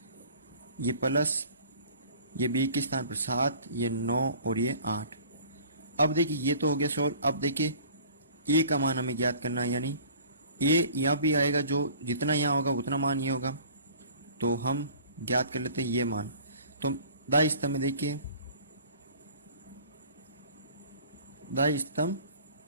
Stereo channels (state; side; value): inverted; both; correlation -0.48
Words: ये प्लस ये b के स्थान पर 7, ये 9 और ये 8। अब देखिए ये तो हो गया सॉल्व। अब देखिए a का मान हमें ज्ञात करना है, यानी a यहाँ भी आएगा, जो जितना यहाँ होगा उतना मान ये होगा, तो हम ज्ञात कर लेते हैं ये मान। तो दाई स्तंभ में देखिए, दाई स्तंभ